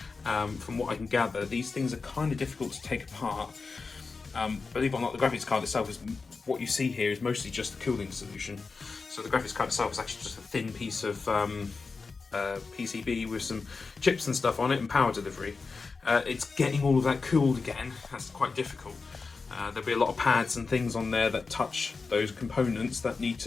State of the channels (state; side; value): quieter; right; 4.4 dB